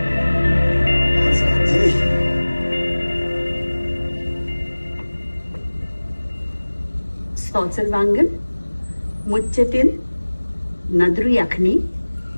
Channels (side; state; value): both; inverted; correlation -1.00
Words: Salzerwangen, मुच्चतिन, नदरू यखनी,